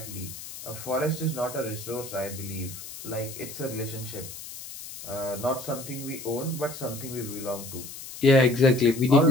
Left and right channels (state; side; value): noise; left; hiss, 12 dB below the sound